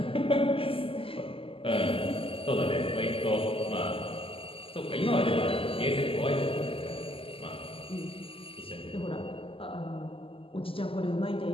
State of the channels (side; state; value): right; late; 0.26 ms